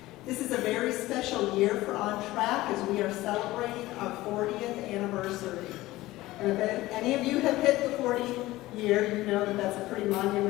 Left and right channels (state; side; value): quieter; right; 17.8 dB